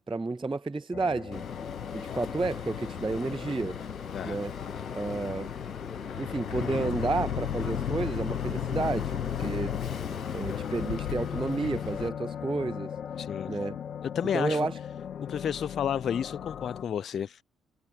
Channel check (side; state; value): both; normal; correlation 0.72